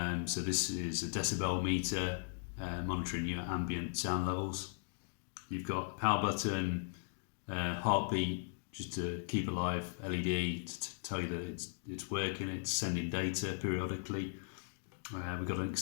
So this is a decibel meter monitoring your ambient sound levels. You've got a power button, heartbeat just to keep alive, LED to tell you that it's working, it's sending data periodically. We've got an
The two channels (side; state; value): right; silent; digital silence